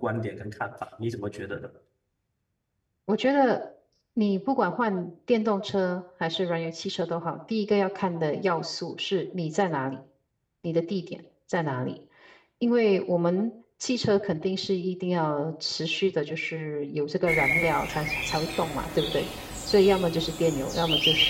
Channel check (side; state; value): both; identical; correlation 1.00